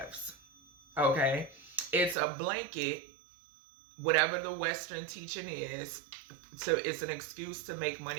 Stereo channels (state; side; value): drops out; left; at 2.1 s